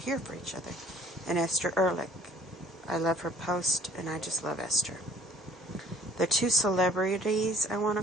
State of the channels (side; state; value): both; normal; correlation 0.56